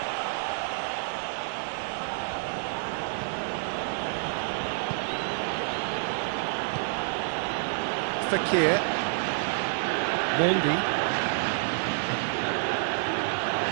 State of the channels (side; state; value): left; silent; 59 dB below the other